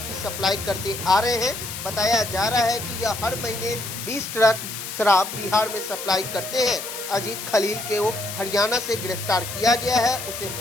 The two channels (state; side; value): noise; left; hiss, 8 dB below the sound